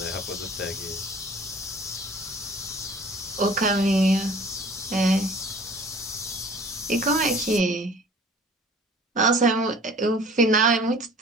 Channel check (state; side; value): normal; both; correlation 0.48